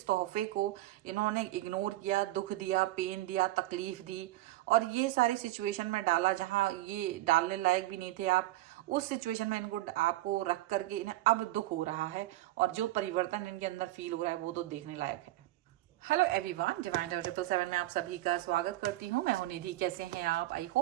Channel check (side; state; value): left; quieter; 16.8 dB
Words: तोहफे को इन्होंने इग्नोर किया, दुख दिया, पेन दिया, तकलीफ दी और ये सारी सिचुएशन में डाला जहां ये डालने लायक भी नहीं थे आप। उस सिचुएशन में इनको आपको रख करके इन्हें अब दुख हो रहा है और जो परिवर्तन इनके अंदर फील हो रहा है वो तो देखने लायक है। हेलो एवरीवन, डिवाइन 777 में आप सभी का स्वागत करती हूँ। मैं हूं निधि। कैसे हैं आप? आई